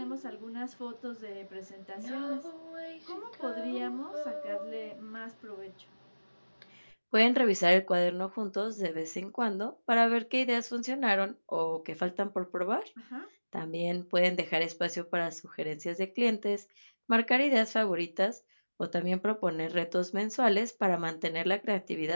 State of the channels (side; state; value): both; inverted; correlation -1.00